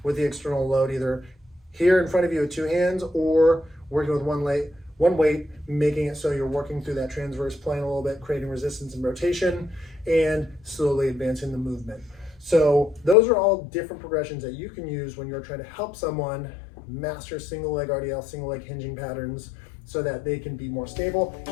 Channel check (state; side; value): drops out; right; at 13.2 s